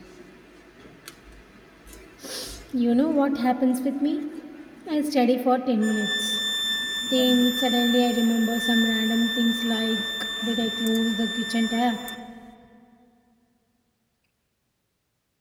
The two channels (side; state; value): both; identical; correlation 1.00